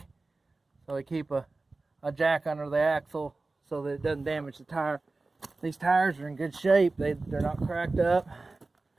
so we keep a jack under the axle so that it doesn't damage the tire. These tires are in good shape. They're not cracked up.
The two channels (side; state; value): left; quieter; 3.4 dB